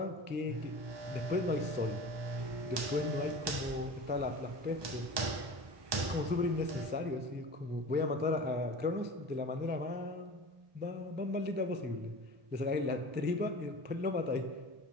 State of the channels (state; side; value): late; left; 1.2 ms